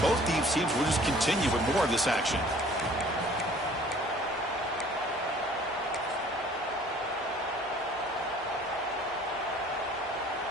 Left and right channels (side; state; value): both; normal; correlation 0.53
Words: both these teams will just continue with more of this action.